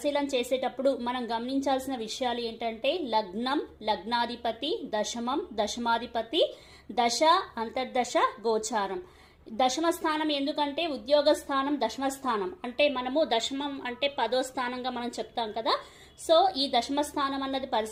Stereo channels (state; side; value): identical; both; correlation 1.00